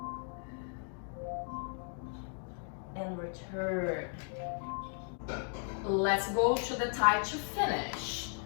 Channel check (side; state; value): right; silent; 54 dB below the other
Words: And return. Let's go to the thigh to finish.